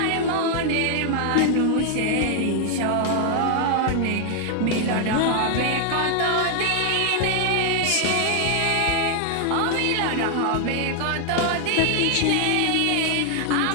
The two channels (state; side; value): different; both; correlation 0.00